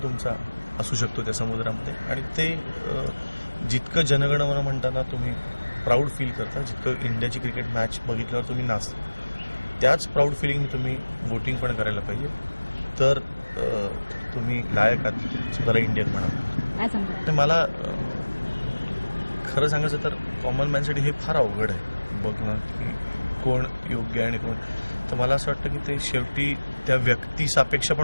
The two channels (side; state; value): both; inverted; correlation -1.00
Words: तुमचा असू शकतो त्या समुद्रामध्ये. आणि ते जितकं जनगणमन म्हणताना तुम्ही प्राऊड फील करता, जितकं इंडियाची क्रिकेट मॅच बघितल्यावर तुम्ही नाचता, त्याच प्राऊड फिलिंग तुम्ही वोटिंग पण करायला पाहिजे. तर तुम्ही लायक आहात स्वतःला इंडियन म्हणा. तर मला खरं सांगायचं तर कॉमन मॅनसाठी हे फार अवघड आहे बघणं की कोण योग्य आहे आणि कोण. तर मला असं वाटतं की ते शेवटी त्या व्यक्तीसापेक्ष